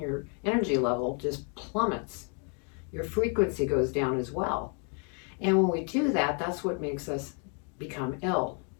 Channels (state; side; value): quieter; right; 39.2 dB